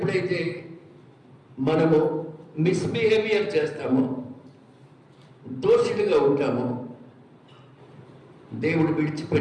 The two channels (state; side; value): identical; both; correlation 1.00